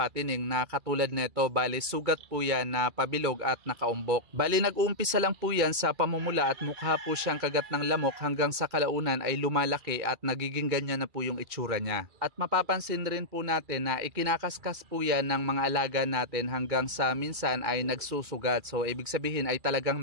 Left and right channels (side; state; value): left; late; 2.3 ms